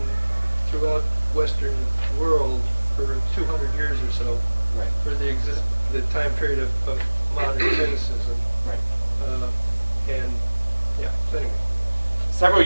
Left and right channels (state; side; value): inverted; both; correlation -1.00